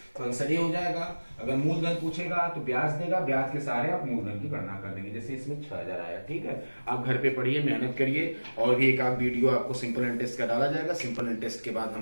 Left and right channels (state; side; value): inverted; both; correlation -1.00